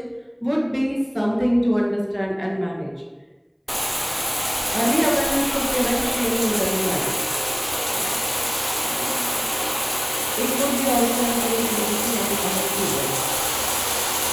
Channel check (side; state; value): both; identical; correlation 1.00